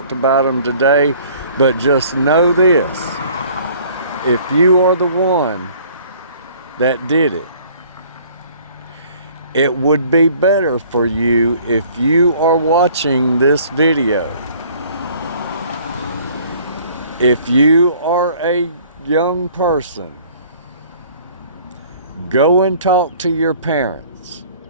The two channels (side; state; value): both; inverted; correlation -0.54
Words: about them today. But just know this, if you are the one that did it, it would be better for you if you are watching this video. If you are a young person, go and talk to your parents.